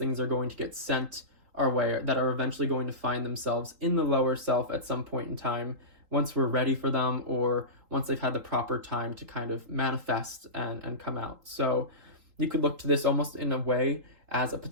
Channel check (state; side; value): late; left; 3.8 ms